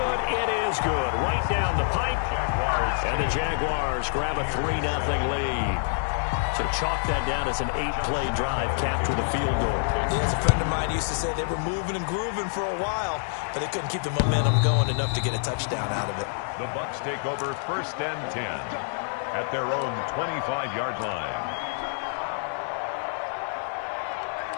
It is good. Right down the pipe. And the Jaguars grab a 3-0 lead. So chalk that down as an 8-play drive capped with a field goal. Yeah, as a friend of mine used to say, they were moving and grooving for a while, but they couldn't keep the momentum going enough to get a touchdown out of it. The Bucs take over 1st and 10 at their own 25-yard line.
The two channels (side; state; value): right; silent; 60 dB below the other